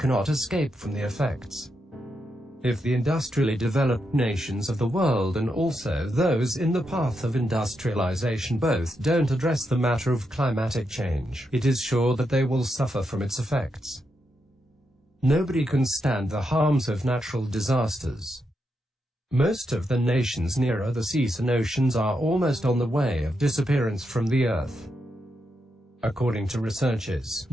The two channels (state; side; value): normal; both; correlation 0.83